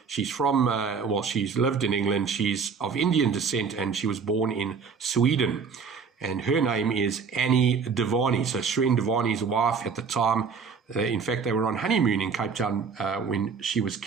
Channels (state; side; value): quieter; left; 5.7 dB